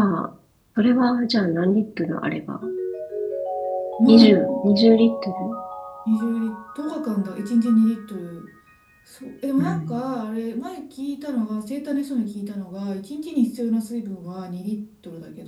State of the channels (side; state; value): both; identical; correlation 1.00